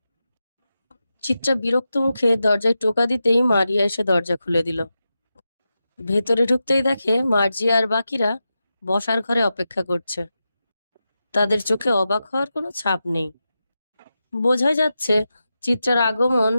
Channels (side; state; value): both; inverted; correlation -0.90